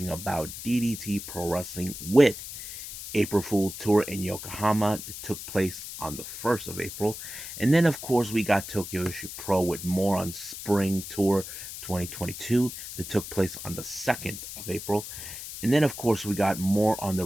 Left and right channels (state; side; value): noise; left; hiss, 10 dB below the sound